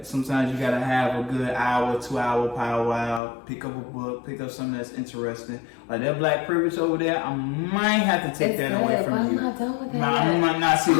Sometimes you gotta have a good hour, 2 hour powwow. Pick up a book, pick up something that's interesting. Like that Black Privilege over there, I might have to take that away from you. I'm not done with that. I'm not. See,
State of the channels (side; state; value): right; drops out; at 3.2 s